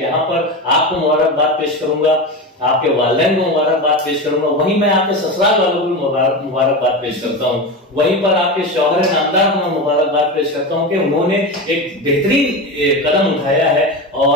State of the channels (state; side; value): normal; both; correlation 0.21